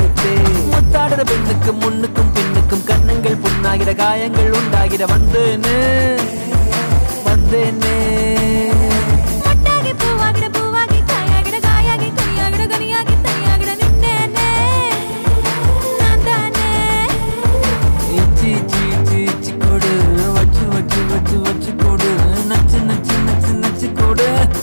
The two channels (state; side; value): inverted; both; correlation -1.00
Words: முத்தாடுற பெண்ணுக்கும் முன்னுக்கும் பின்னுக்கும் கண்ணுங்கள் புண்ணாகிற காயங்கள் உண்டா முத்தாகிட வந்தேனே வந்தேனே மொட்டாகி பூவாகிட பூவாகி காயாகிட காயாகி கொய்யாகிட கனியாகி தையாகிட நின்னேனே நான் தானே இச்சி இச்சி இச்சி இச்சி கொடு வச்சு வச்சு வச்சு வச்சு கொடு நச்சு நச்சு நச்சு நச்சு கொடு